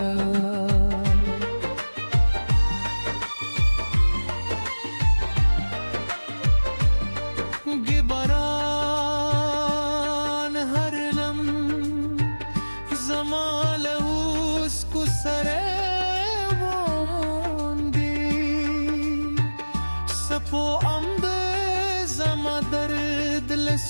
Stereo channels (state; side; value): inverted; both; correlation -1.00